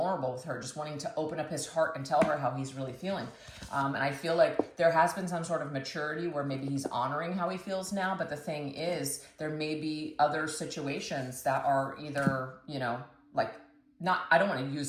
with her, just wanting to open up his heart and tell her how he's really feeling. And I feel like there has been some sort of maturity where maybe he's honoring how he feels now, but the thing is, there may be other situations that are either, you know, like not, I don't want to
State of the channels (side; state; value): both; identical; correlation 1.00